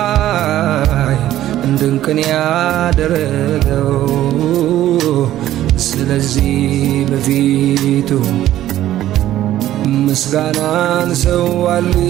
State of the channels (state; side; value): quieter; left; 13.3 dB